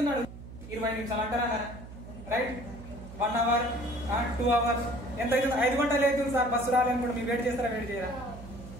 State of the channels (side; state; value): right; noise; hum, 14 dB below the sound